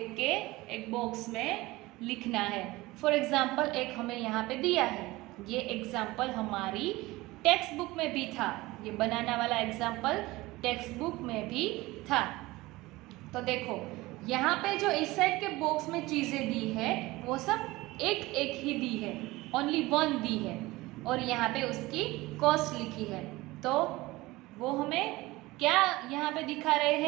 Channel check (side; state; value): left; quieter; 20.0 dB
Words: के एक बॉक्स में लिखना है। फॉर एग्जाम्पल एक हमें यहाँ पे दिया है, ये एग्जाम्पल हमारी टेक्स्ट बुक में भी था, ये बनाना वाला एग्जाम्पल टेक्स्ट बुक में भी था। तो देखो यहाँ पे जो इस साइड के बॉक्स में चीज़ें दी है वो सब एक एक ही दी है, ओनली वन दी है, और यहाँ पे उसकी कॉस्ट लिखी है। तो वो हमें क्या यहाँ पे दिखा रहे